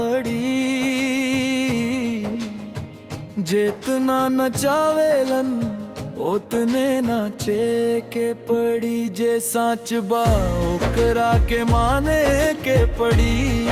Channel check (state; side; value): identical; both; correlation 1.00